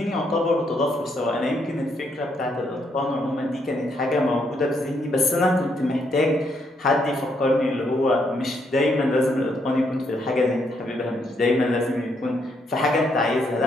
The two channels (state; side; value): normal; both; correlation 0.75